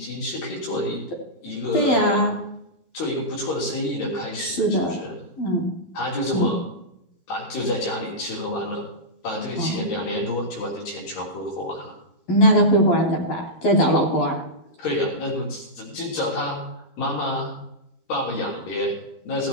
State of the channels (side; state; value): right; late; 12 ms